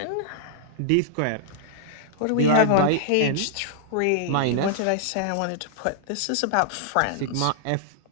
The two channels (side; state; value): both; different; correlation -0.01